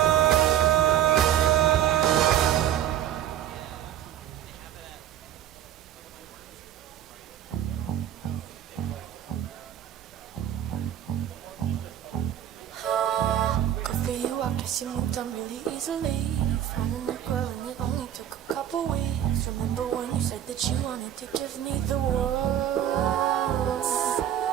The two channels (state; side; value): quieter; left; 11.1 dB